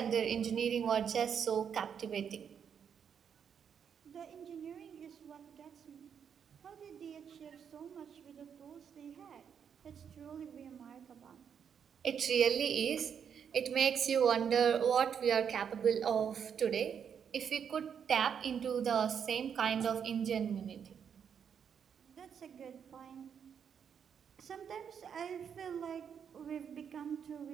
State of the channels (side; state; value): left; quieter; 7.6 dB